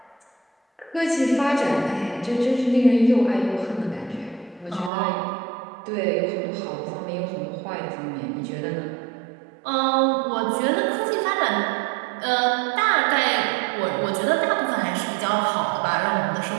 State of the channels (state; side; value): drops out; left; at 4.9 s